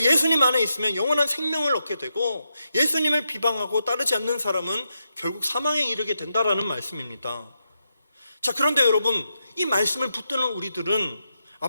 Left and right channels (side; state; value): both; inverted; correlation -0.85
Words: 예수님 안에 있으면 영원한 생명을 얻게 되고, 예수님을 비방하고 따르지 않는 사람은 결국 사망에 이르게 된다라는 말씀입니다. 자, 그런데 여러분, 이 말씀을 붙드는 우리들은